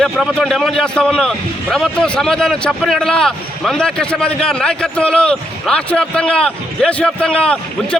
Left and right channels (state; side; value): normal; both; correlation 0.78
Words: ప్రభుత్వం డిమాండ్ చేస్తూ ఉన్నాం. ప్రభుత్వం సమాధానం చెప్పని ఎడల మందాకృష్ణ మాదిగ గారి నాయకత్వంలో రాష్ట్ర వ్యాప్తంగా, దేశవ్యాప్తంగా